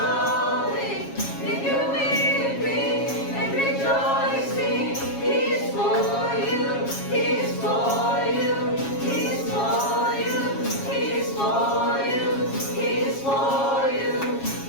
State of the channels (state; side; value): late; right; 7.3 ms